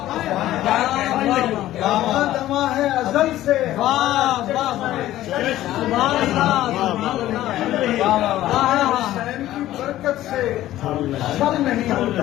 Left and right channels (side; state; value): right; quieter; 14.3 dB